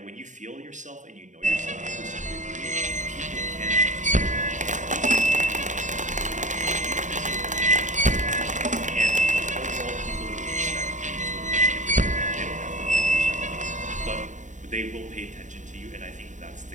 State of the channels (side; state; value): left; late; 0.36 ms